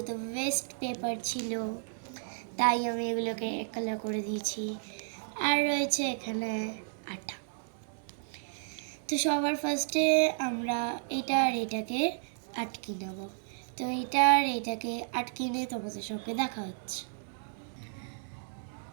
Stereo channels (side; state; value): left; silent; digital silence